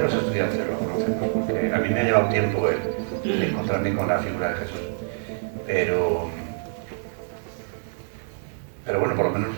estudiantes lo conocemos, porque a mí me ha llevado tiempo el encontrarme con la figura de Jesús, pero bueno, por lo menos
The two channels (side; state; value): left; silent; 61 dB below the other